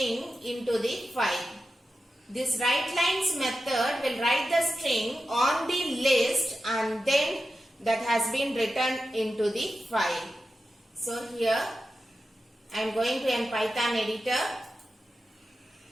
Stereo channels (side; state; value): both; normal; correlation 0.92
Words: into the file. This write lines method will write the string on the list and then that has been written into the file. So here I am going to an Python editor.